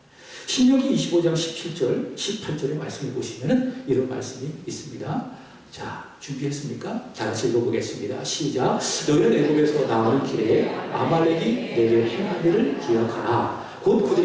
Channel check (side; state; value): both; identical; correlation 1.00